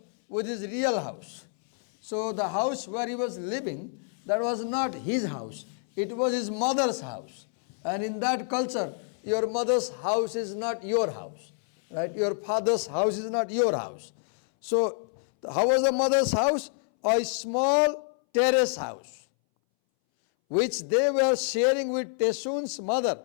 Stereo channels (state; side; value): silent; right; 60 dB below the other